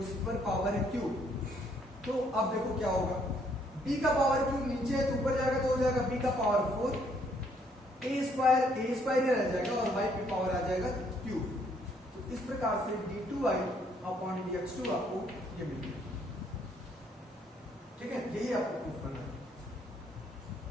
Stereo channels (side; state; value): both; normal; correlation 0.67